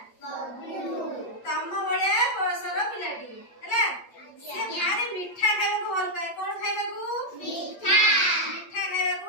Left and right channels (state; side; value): late; right; 8.5 ms